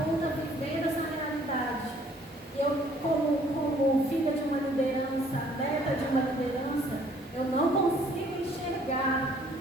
vivendo essa realidade. Eu, como filha de uma liderança, neta de uma liderança, eu não consigo enxergar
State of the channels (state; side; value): normal; both; correlation 0.60